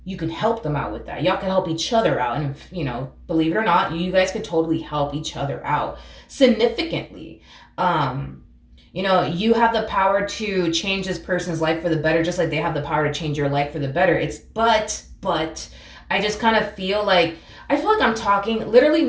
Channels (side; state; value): both; identical; correlation 1.00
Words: You can help them out with that. Y'all can help each other out. And if, believe it or not, you guys could totally help each other out significantly. You have the power to change this person's life for the better, just like they have the power to change your life for the better. But I just kind of feel like I'm talking, literally,